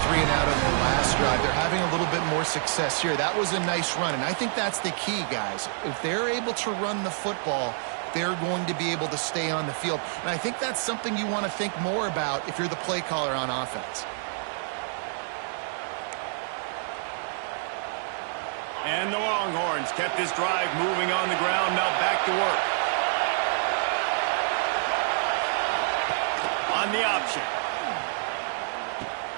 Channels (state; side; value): silent; left; digital silence